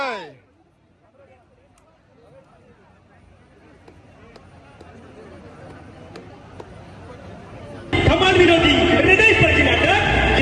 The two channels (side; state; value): both; identical; correlation 1.00